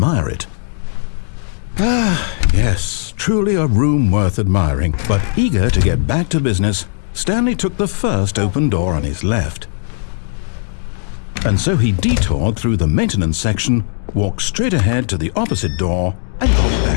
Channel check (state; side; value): silent; right; digital silence